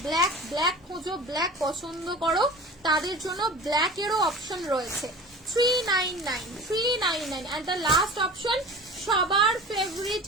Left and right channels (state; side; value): normal; both; correlation 0.37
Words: ব্ল্যাক ব্ল্যাক খোঁজো, ব্ল্যাক পছন্দ করো, তাদের জন্য ব্ল্যাক এরও অপশন রয়েছে। 399 এন্ড দ্য লাস্ট অপশন সবার favourite